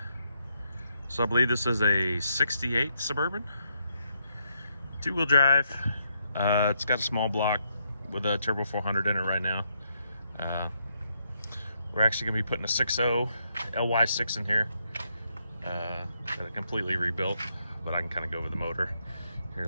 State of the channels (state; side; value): inverted; both; correlation -0.78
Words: So I believe this is a 68 Suburban, two-wheel drive. It's got a small block with a turbo 400 in it right now. We're actually going to be putting a 6.0 LY6 in here. Got it completely rebuilt, but I can kind of go over the motor here